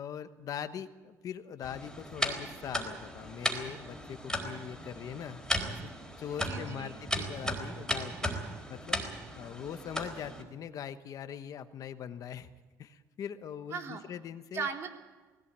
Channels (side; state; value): both; normal; correlation 0.54